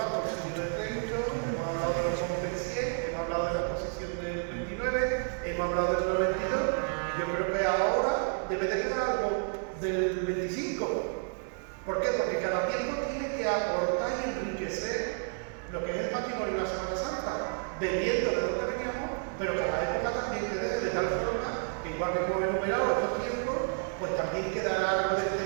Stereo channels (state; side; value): silent; left; 57 dB below the other